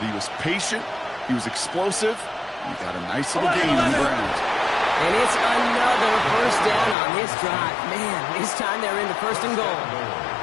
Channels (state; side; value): drops out; right; at 7.0 s